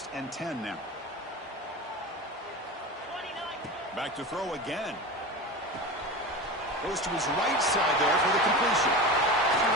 and 10 now. Back to throw again. Goes to his right side there for the completion.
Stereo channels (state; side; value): normal; both; correlation 0.28